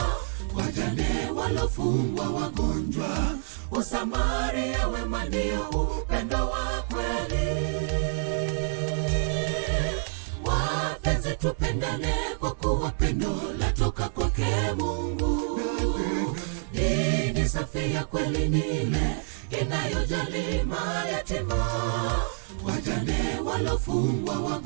wajane, walofungwa, wagonjwa. Usamaria wema ndio upendo wa kweli. Wapenzi, tupendane kwa kuwa pendo latoka kwake Mungu. Dini safi ya kweli ni ile inayojali mayatima, wajane, walofungwa,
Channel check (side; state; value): left; silent; 60 dB below the other